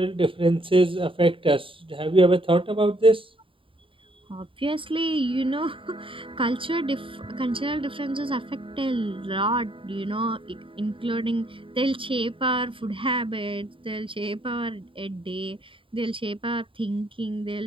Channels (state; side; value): late; left; 0.25 ms